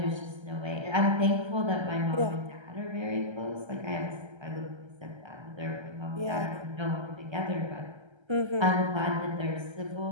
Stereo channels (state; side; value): late; left; 1.3 ms